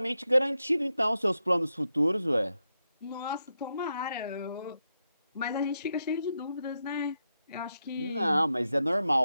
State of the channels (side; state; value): both; inverted; correlation -0.85